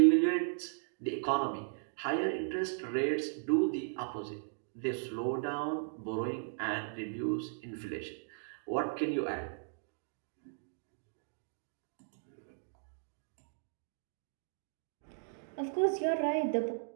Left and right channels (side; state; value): left; silent; digital silence